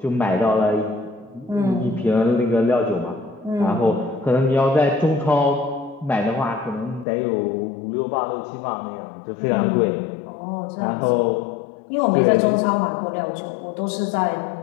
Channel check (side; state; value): right; drops out; at 7.1 s